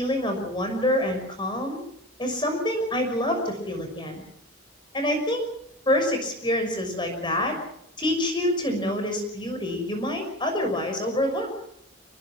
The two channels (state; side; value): normal; both; correlation 0.32